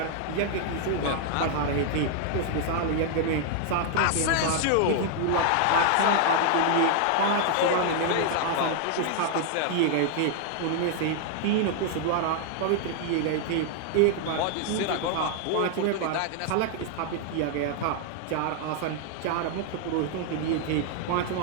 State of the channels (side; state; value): both; different; correlation 0.00